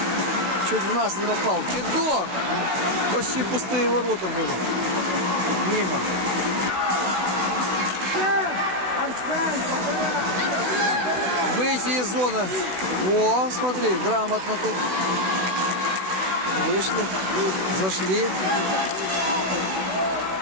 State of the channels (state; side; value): late; left; 16 ms